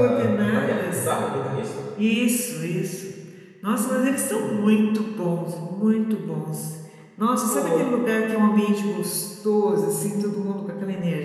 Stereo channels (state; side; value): identical; both; correlation 1.00